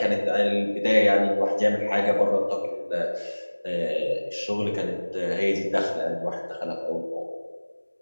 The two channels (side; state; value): both; inverted; correlation -1.00